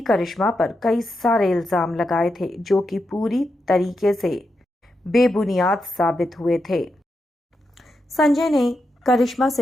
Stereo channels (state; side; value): normal; both; correlation 0.86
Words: करिश्मा पर कई सारे इल्जाम लगाए थे जो कि पूरी तरीके से बेबुनियाद साबित हुए थे। संजय ने करिश्मा